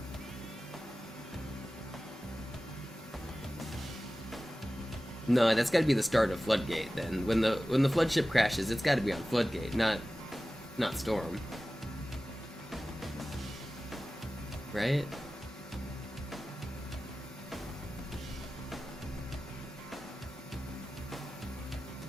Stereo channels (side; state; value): both; normal; correlation 0.96